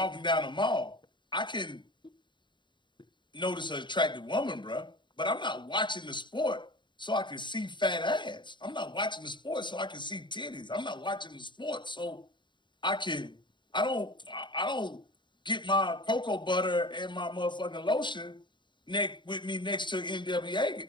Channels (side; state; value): right; late; 0.23 ms